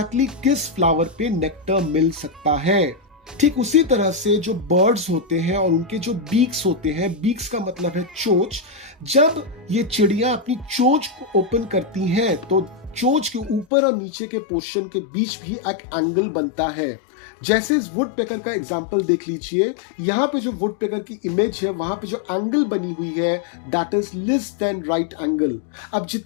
किस फ्लावर पे नेक्टर मिल सकता है। ठीक उसी तरह से जो बर्ड्स होते हैं और उनके जो बीक्स होते हैं, बीक्स का मतलब है चोंच, जब ये चिड़िया अपनी चोंच को ओपन करती हैं तो चोंच के ऊपर और नीचे के पोर्शन के बीच भी एक एंगल बनता है। जैसे इस वुड पेकर का एग्जांपल देख लीजिए, यहाँ पे जो वुड पेकर की इमेज है वहां पे जो एंगल बनी हुई है that is less than right angle. अब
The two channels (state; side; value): drops out; right; at 13.7 s